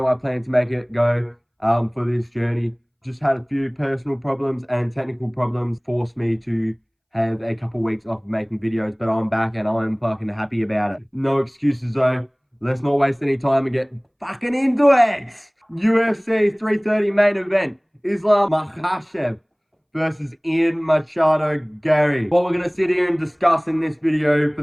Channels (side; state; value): both; identical; correlation 1.00